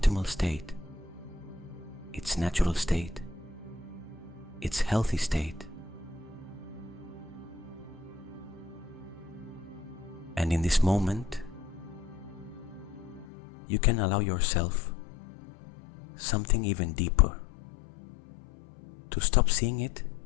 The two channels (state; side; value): drops out; right; at 13.2 s